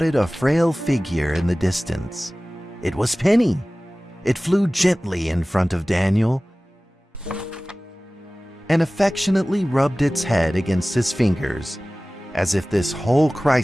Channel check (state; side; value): normal; both; correlation 0.98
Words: a frail figure in the distance. It was Penny. It flew gently in front of Daniel and affectionately rubbed its head against his fingers, as if this whole